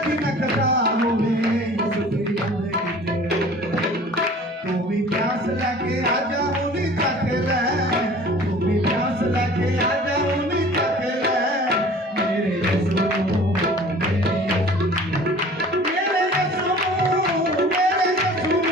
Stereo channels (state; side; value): normal; both; correlation 0.46